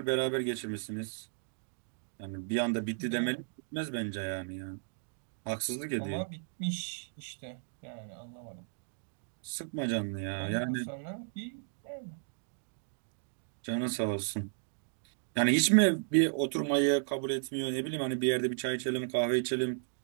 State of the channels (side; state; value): left; silent; digital silence